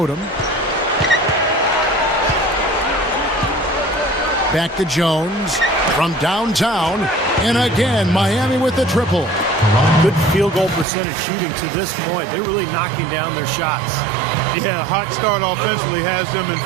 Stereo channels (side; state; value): left; drops out; at 10.9 s